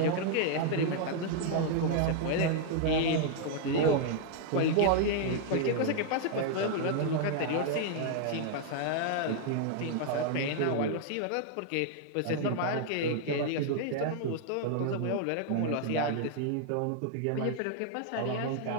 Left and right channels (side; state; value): both; different; correlation 0.00